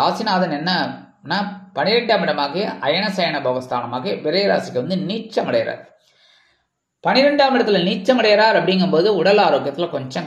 ராசிநாதன் என்னன்னா 12ஆம் இடமாகிய அயனசயன போகஸ்தானமாக விரைராசிக்கு நீச்சம் அடைகிறார். 12ஆம் இடத்துல நீச்சம் அடைகிறார் அப்படிங்கும்போது உடல் ஆரோக்கியத்தில்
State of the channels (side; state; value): both; identical; correlation 1.00